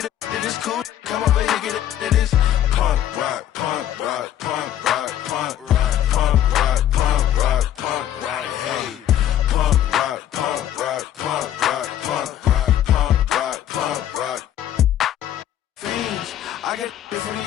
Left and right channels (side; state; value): right; quieter; 11.4 dB